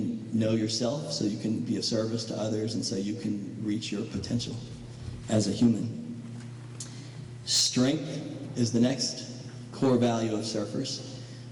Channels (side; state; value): both; identical; correlation 1.00